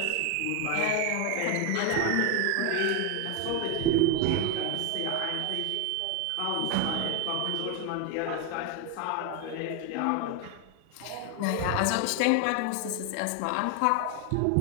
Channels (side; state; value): both; different; correlation 0.01